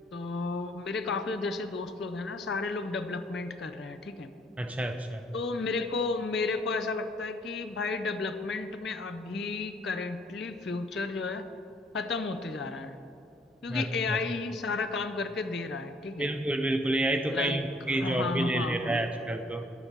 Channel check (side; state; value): both; normal; correlation 0.62